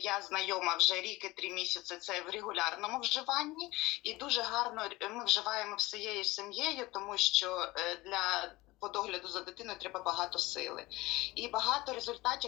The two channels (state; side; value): quieter; right; 20.2 dB